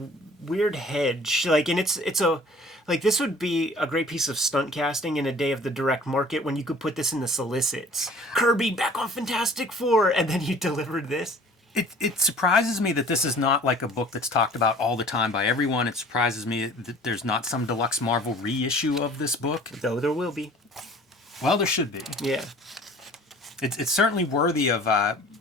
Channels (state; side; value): normal; both; correlation 0.49